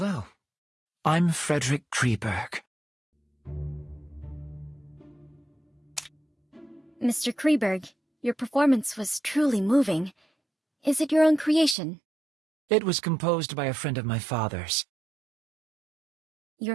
I'm Frederick Kreeberg. Mr. Kreeberg, your performance was truly moving. Is it your own creation? It was composed by a friend of my father's.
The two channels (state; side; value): drops out; left; at 11.8 s